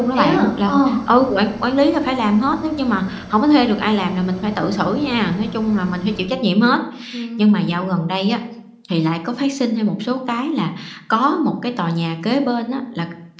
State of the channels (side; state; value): both; identical; correlation 1.00